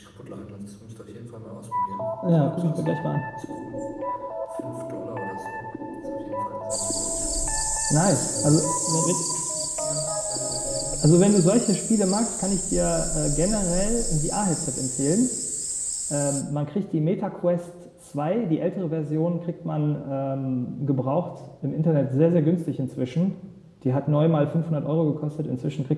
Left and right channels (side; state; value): both; identical; correlation 1.00